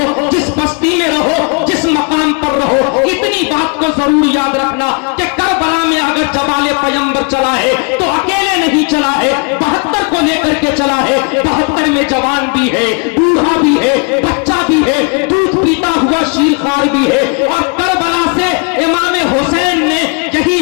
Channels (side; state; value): right; quieter; 35.7 dB